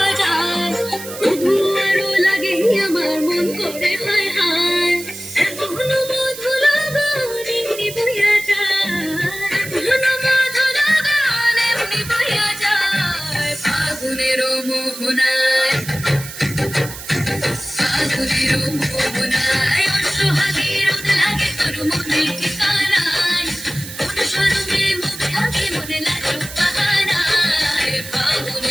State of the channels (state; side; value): noise; right; hiss, 12 dB below the sound